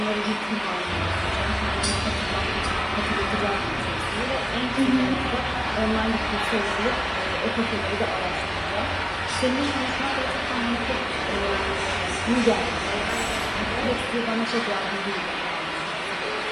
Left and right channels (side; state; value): both; identical; correlation 1.00